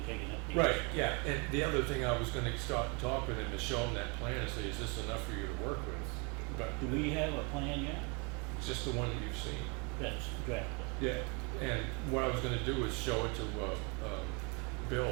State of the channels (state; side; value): quieter; left; 32.3 dB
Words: taking up the. Right, yeah, and the other thing I was gonna start and talk with him is show him that plan and say, is this enough for you to work with? But Do we have a plan yet? it's just the one that you've seen. That's drafted. Yeah, and what I was gonna do is show it to Bill,